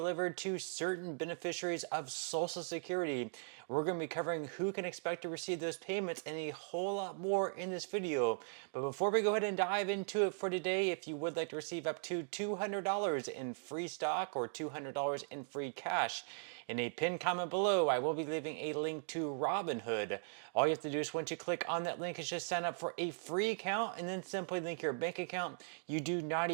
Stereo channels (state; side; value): silent; left; digital silence